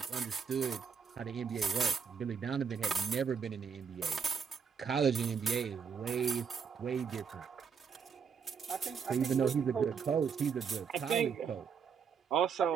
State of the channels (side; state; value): left; quieter; 6.5 dB